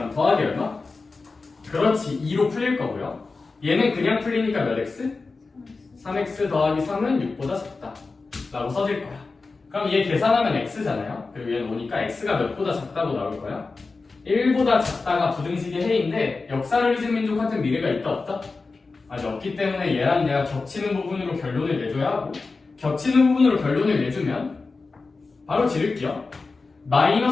더하기 얼마? 그렇지 2로 풀릴 거고요. 얘는 그냥 풀리니까 몇 x? 3x 더하기 3은 6보다 작다 라고 써질 거야. 그럼 얘 계산하면 x잖아요. 그리고 얘는 오니까 x가 몇보다 작다고 나올 거야. 1보다 작다가 부등식의 해인데 역사를 민족한테 미래가 있다 없다? 아직 없기 때문에 얘랑 얘가 겹치는 부분으로 결론을 내줘야 하고 겹치는 부분으로 결론을 내주면 바로 지를게요.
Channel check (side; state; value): right; quieter; 4.0 dB